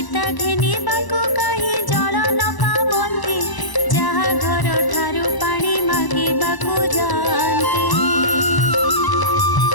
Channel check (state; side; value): late; right; 1.0 ms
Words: घेनिबाको कही जल न पाबंती जहा घर ठारू पानी मागिबाको जाती